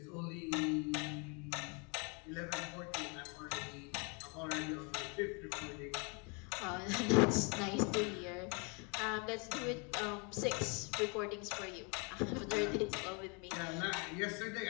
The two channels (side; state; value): right; quieter; 33.8 dB